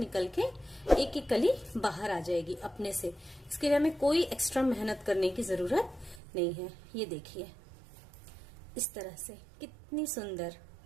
के एक एक कली बाहर आ जाएगी अपने से। इसके लिए हमें कोई एक्स्ट्रा मेहनत करने की जरूरत नहीं है। ये देखिए इस तरह से कितनी सुंदर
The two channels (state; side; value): drops out; left; at 6.2 s